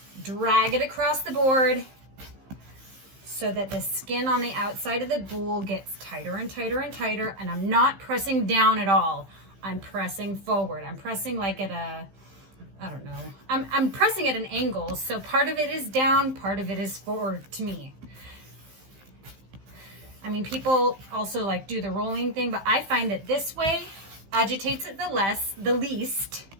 drag it across the board so that the skin on the outside of the boule gets tighter and tighter and tighter, and I'm not pressing down at all. I'm pressing forward. I'm pressing like at a, I don't know. I'm pressing at an angle, so part of it is down, part of it is forward to me. I mean, people also like do the rolling thing, but I find that this way agitates it the least,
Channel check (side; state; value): left; late; 15 ms